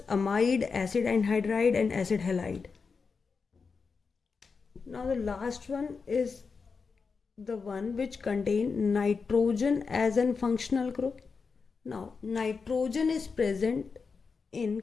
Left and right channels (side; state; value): right; quieter; 5.0 dB